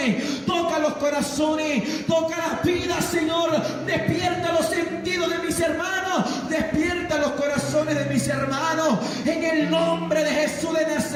Toca los corazones, toca las vidas, Señor. Despierta los sentidos de mis hermanos. Despierta los corazones de mis hermanos. En el nombre de Jesús de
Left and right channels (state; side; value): identical; both; correlation 1.00